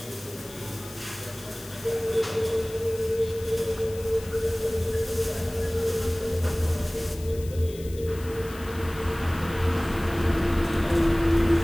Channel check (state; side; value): noise; left; hiss, 18 dB below the sound